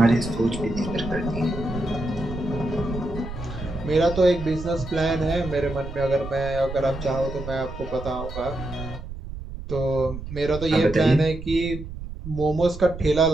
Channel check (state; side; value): noise; right; rumble, 10 dB below the sound